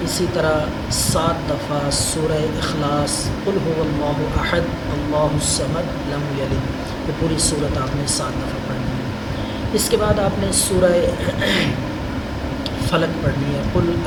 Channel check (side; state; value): both; identical; correlation 1.00